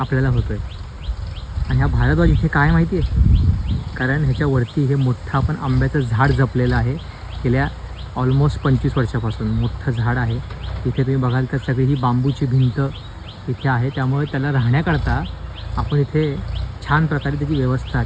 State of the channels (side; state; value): both; identical; correlation 1.00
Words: होतो आहे. आणि हा भारद्वाज इथे काय माहिती आहे, कारण ह्याच्यावरती हे मोठं आपण आंब्याचं झाड जपलेलं आहे. गेल्या ऑलमोस्ट 25 वर्षापासून मोठं झाड आहे. इथे तुम्ही बघाल तर सगळी ही बांबूची भिंत इथे आहे. त्यामुळे त्याला राहण्याकरता आपण इथे छान प्रकारे त्याची व्यवस्था